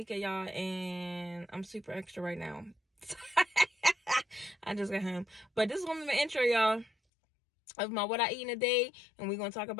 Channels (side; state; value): right; drops out; at 6.9 s